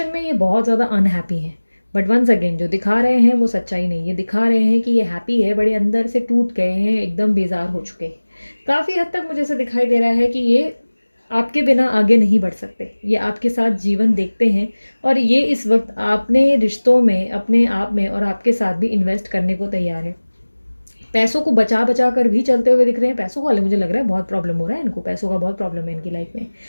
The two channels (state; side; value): inverted; both; correlation -1.00